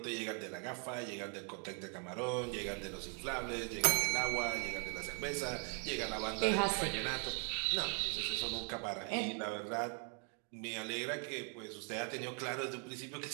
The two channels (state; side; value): quieter; left; 39.9 dB